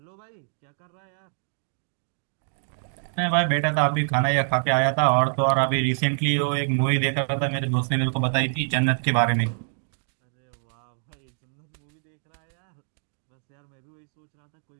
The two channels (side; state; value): left; silent; digital silence